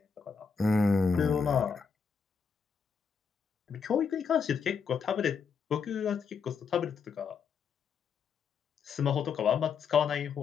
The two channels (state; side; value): quieter; right; 5.9 dB